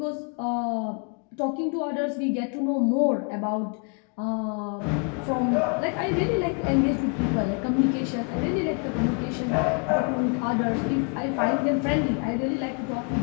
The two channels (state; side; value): quieter; right; 40.0 dB